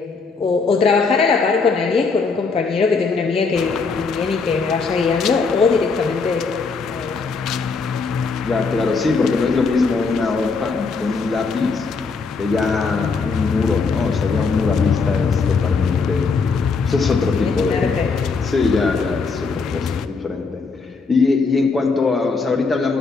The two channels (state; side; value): quieter; right; 4.6 dB